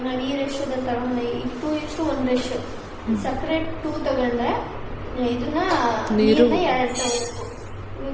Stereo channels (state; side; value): identical; both; correlation 1.00